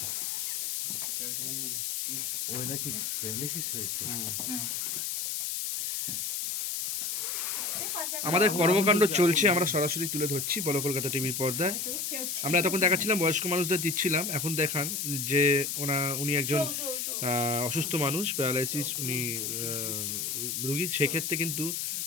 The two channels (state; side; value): noise; left; hiss, 2 dB below the sound